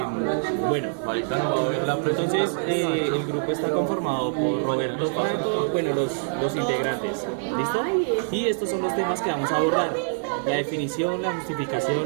Bueno, entonces el grupo está conformado por Roberto Franco, bueno, los integrantes, ¿listo? Y estos son los temas que vamos a abordar: la definición, la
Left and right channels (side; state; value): left; silent; 62 dB below the other